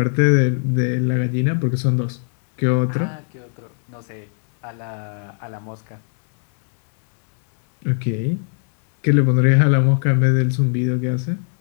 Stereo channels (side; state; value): right; silent; 66 dB below the other